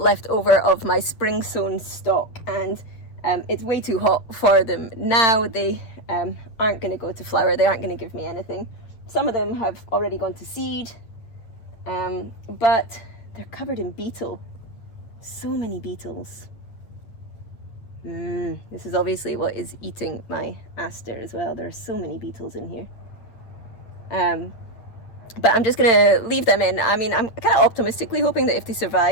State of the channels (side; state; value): right; late; 8.8 ms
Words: over of my spring sown stock, and it's way too hot for them now. They aren't going to go to flower. They aren't going to give me anything. Some of them have already gone to seed, but they're covered in beetle. So many beetles. This is obviously what is eating my aster as well. There are so many beetles in here. But I'm just going to leave them in. I mean, I'm kind of optimistically hoping that if they